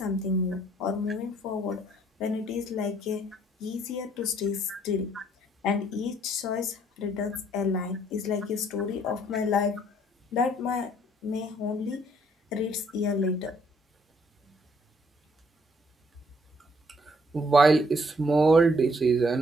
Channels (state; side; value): normal; both; correlation 0.65